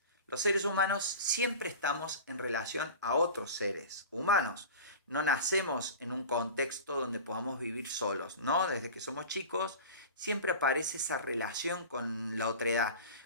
Los seres humanos siempre estamos en relación a otros seres humanos. No nacemos en un contexto donde podamos vivir solos, ¿no? Desde que somos chicos siempre aparece esa relación con la otredad,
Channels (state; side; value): inverted; both; correlation -0.34